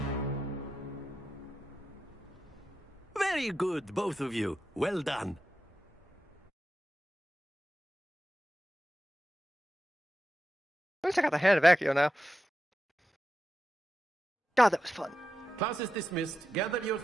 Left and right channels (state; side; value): normal; both; correlation 0.90